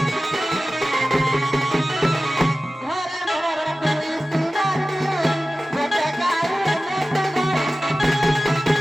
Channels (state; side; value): normal; both; correlation 0.96